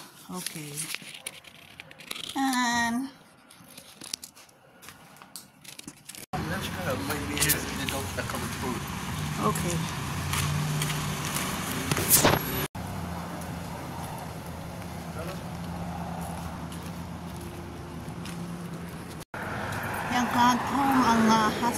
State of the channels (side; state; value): both; identical; correlation 1.00